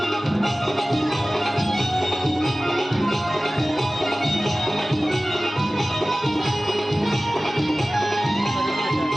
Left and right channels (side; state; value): both; normal; correlation 0.97